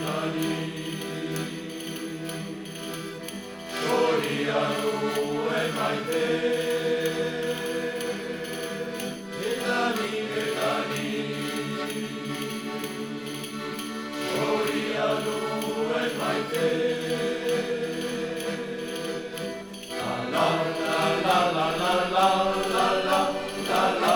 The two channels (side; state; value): both; identical; correlation 1.00